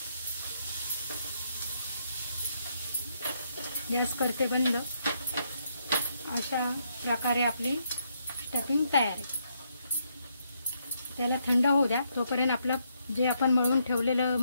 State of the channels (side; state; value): both; inverted; correlation -0.76